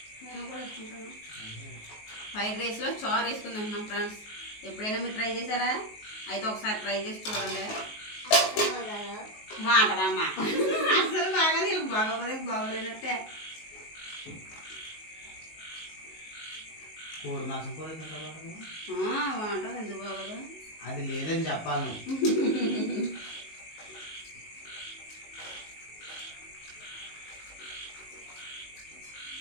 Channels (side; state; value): right; late; 19 ms